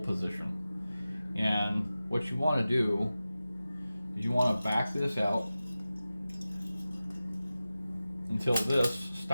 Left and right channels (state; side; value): inverted; both; correlation -0.95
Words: And what you want to do is you want to back this out until this